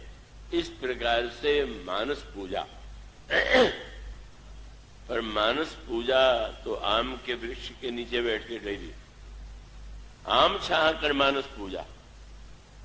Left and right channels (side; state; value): both; identical; correlation 1.00